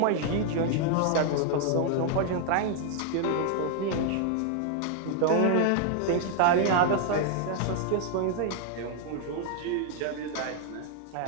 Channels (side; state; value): both; different; correlation 0.00